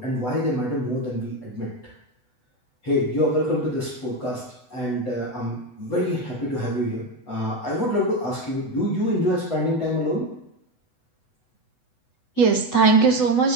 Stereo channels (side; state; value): right; late; 8.0 ms